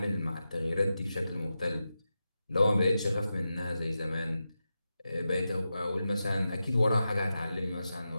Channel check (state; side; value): inverted; both; correlation -0.91